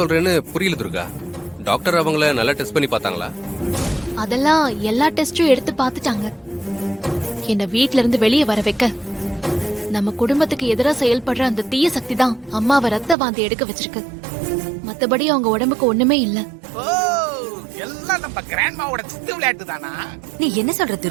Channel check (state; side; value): drops out; left; at 13.2 s